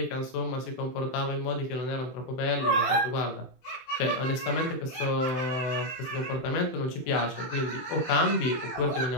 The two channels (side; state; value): right; late; 23 ms